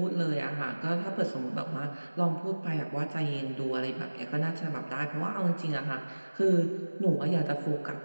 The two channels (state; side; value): inverted; both; correlation -1.00